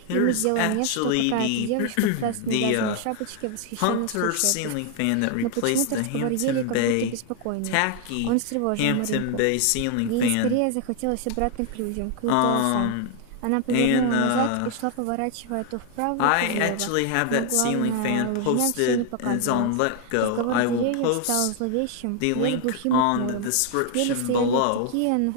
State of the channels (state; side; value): different; both; correlation 0.00